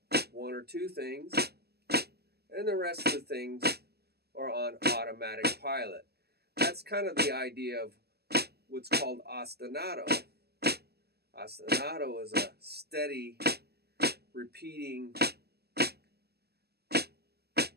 one or two things, and the rest of the things are on automatic pilot. That's kind of the idea of what's called ostinato. Ostinato is a steady, repeating,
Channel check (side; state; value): left; late; 0.46 ms